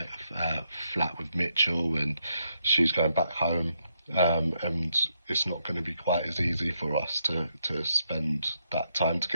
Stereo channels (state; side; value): inverted; both; correlation -0.79